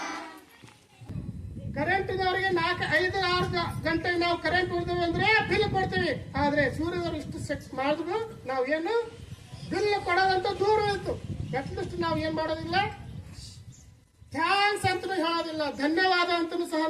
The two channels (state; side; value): identical; both; correlation 1.00